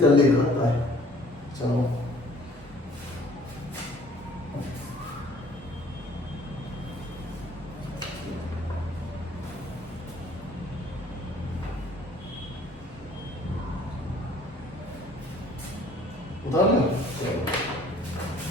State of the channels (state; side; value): normal; both; correlation 0.55